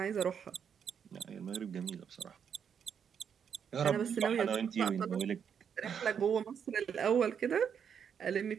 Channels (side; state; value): left; quieter; 7.6 dB